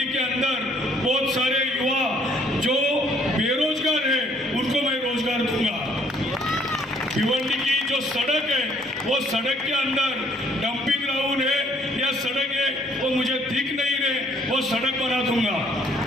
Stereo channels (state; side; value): normal; both; correlation 0.62